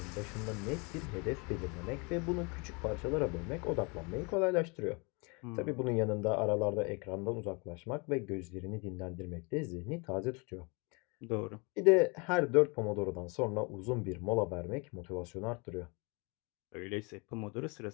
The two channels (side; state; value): right; quieter; 30.5 dB